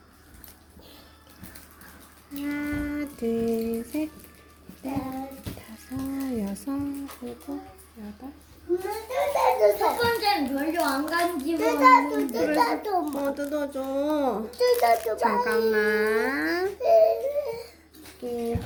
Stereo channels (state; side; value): identical; both; correlation 1.00